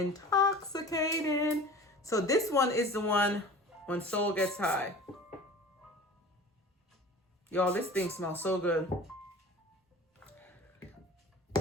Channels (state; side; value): normal; both; correlation 0.40